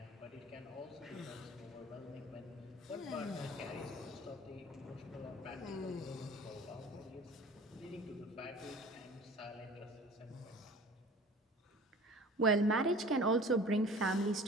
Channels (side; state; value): both; normal; correlation 0.43